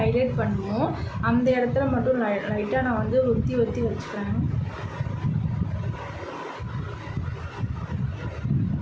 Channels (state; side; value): identical; both; correlation 1.00